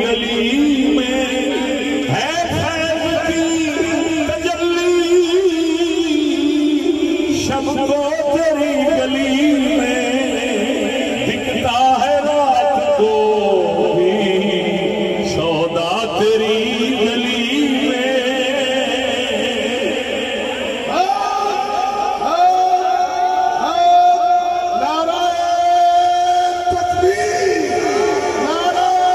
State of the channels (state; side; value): identical; both; correlation 1.00